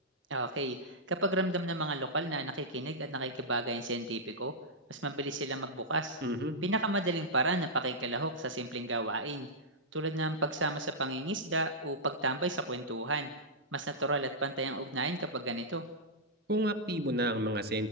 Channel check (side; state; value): both; normal; correlation -0.09